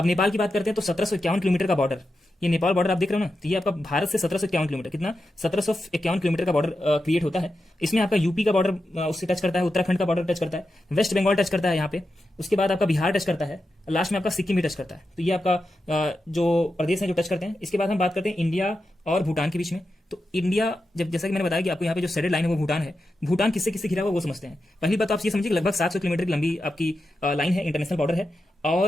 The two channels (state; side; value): normal; both; correlation 0.89